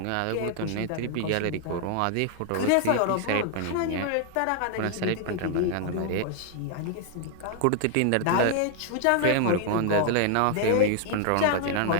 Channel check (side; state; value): both; different; correlation 0.00